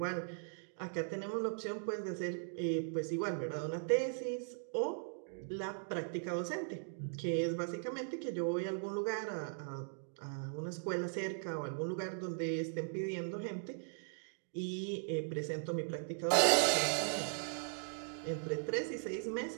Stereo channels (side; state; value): left; silent; digital silence